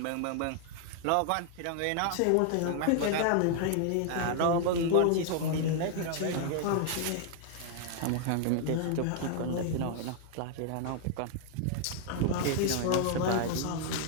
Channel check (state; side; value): different; both; correlation 0.00